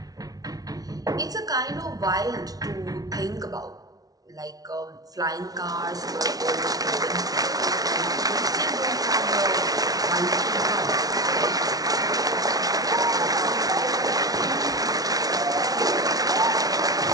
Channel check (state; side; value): late; left; 0.18 ms